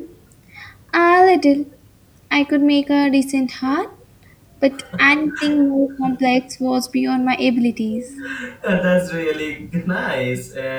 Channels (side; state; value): both; identical; correlation 1.00